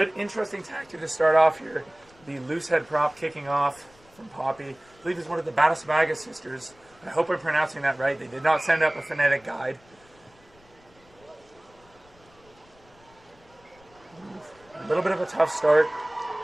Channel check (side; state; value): left; noise; rumble, 29 dB below the sound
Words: interesting tactic to start off here. The loose head prop kicking off from Poppy. I believe it's one of the Batasmaga sisters. I hope I'm pronouncing that right. They did not send up a phonetic guide. A little bit of a tough start.